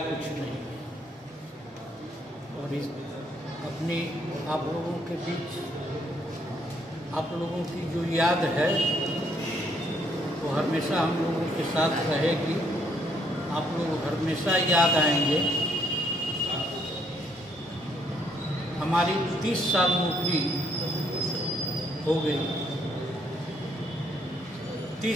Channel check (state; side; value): normal; both; correlation 0.69